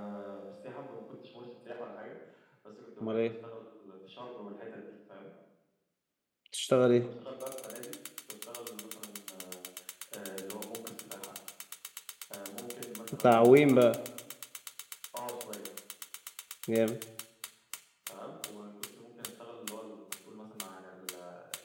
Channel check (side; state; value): both; identical; correlation 1.00